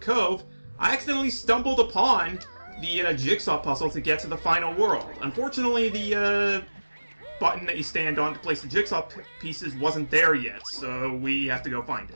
I accidentally stumbled upon the jigsaw puzzle to get to the final world. Unfortunately, the button that you stand on to place the jigsaw pieces wasn't there yet, so we have to go find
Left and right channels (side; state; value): both; inverted; correlation -1.00